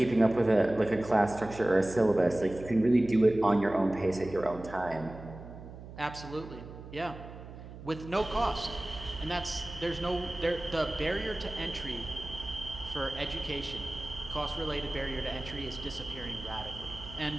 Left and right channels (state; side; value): noise; right; hum, 14 dB below the sound